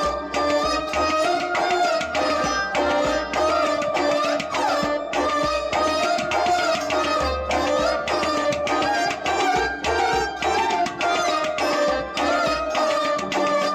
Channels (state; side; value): identical; both; correlation 1.00